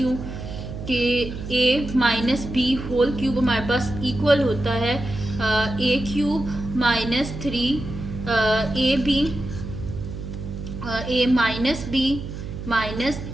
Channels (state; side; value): noise; right; hum, 8 dB below the sound